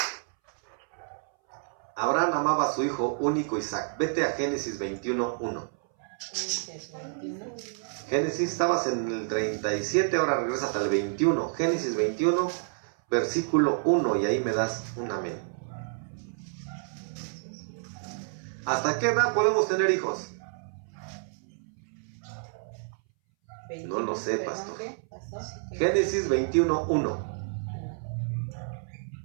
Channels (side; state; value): left; silent; 58 dB below the other